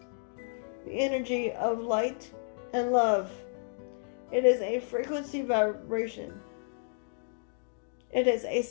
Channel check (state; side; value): silent; right; digital silence